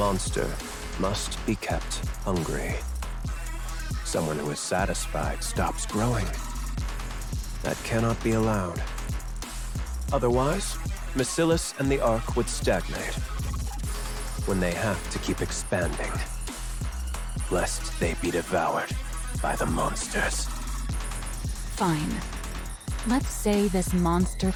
must be kept hungry. Someone who is satisfied stops growing. That cannot be allowed. Otherwise, Mesilis and the Ark would stagnate. When they have to keep expanding, lest they be devoured by the monsters. Fine. Let's say this monster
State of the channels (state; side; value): identical; both; correlation 1.00